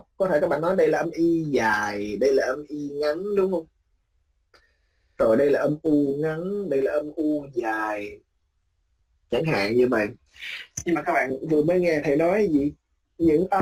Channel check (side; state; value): both; identical; correlation 1.00